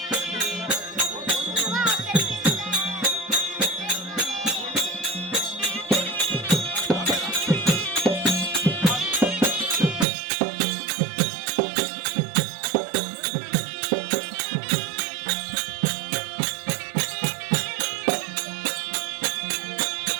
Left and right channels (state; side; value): drops out; left; at 10.1 s